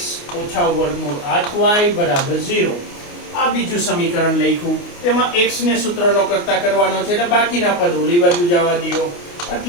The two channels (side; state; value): right; late; 29 ms